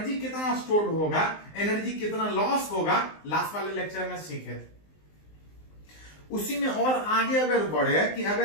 कितना स्टोर होगा, एनर्जी कितना लॉस होगा, लास्ट वाले लेक्चर में सीखे थे। उसी में और आगे अगर बढ़े कि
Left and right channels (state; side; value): late; right; 19 ms